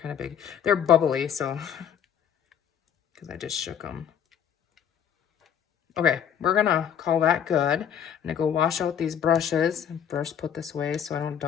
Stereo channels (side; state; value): right; quieter; 8.7 dB